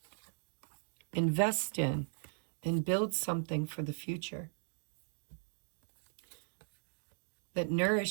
Invest in and build something for the future that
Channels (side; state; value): left; silent; digital silence